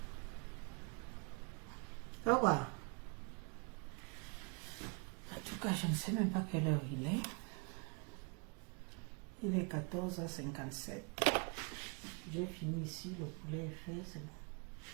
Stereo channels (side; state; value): left; quieter; 33.5 dB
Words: pourquoi? En tout cas, je ne sais même pas quelle heure il est. Il est 14h57. J'ai fini ici, le poulet est fait, c'est bon.